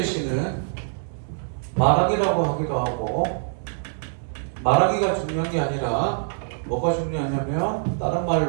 말하기라고 하기도 하고 말하기가 중요한 게 아니라 뭐가 중요하냐면 다른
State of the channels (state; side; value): silent; left; 62 dB below the other